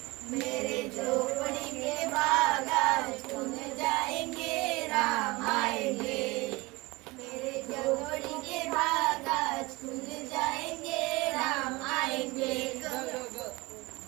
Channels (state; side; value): quieter; left; 23.4 dB